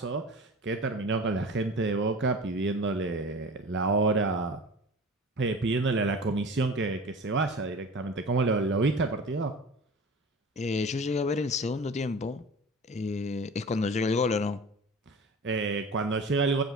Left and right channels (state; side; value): normal; both; correlation 0.37